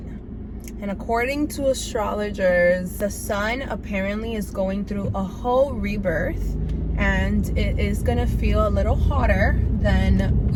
And according to astrologers, the sun apparently is going through a whole rebirth. And it is gonna feel a little hotter than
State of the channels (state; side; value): identical; both; correlation 1.00